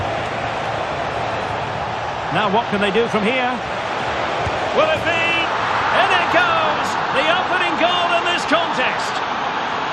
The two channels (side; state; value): both; identical; correlation 1.00